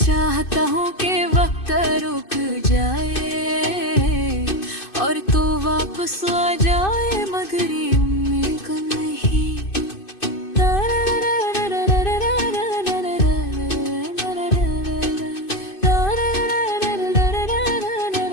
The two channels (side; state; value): right; late; 2.5 ms